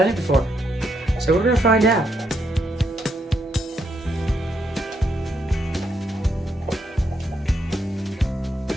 it before, so we're going to find out.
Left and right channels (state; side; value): normal; both; correlation 0.78